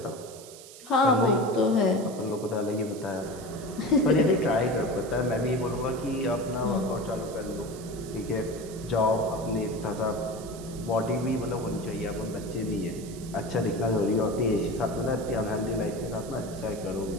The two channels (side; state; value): right; noise; hiss, 17 dB below the sound